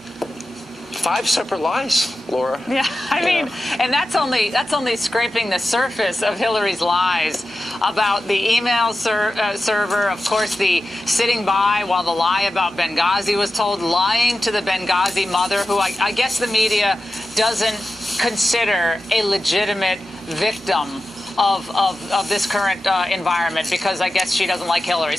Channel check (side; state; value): both; normal; correlation 0.93